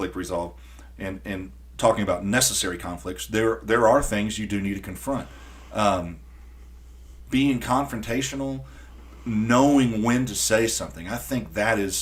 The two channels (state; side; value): identical; both; correlation 1.00